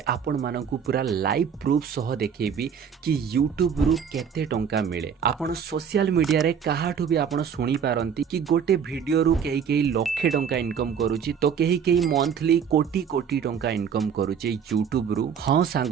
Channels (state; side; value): quieter; left; 7.3 dB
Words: आपण मानकु पूरा लाइव प्रूफ सह देखेबी कि यूट्यूब रु केते टंका मिले। आपण सोशल मीडिया रे काहाठु भी आपण सुनी पारंती कि गोटे वीडियो रु केही केही लक्षे टंका इनकम करूची तो केही केही मंथली कोटी कोटी टंका इनकम करूची यूट्यूब रु। हां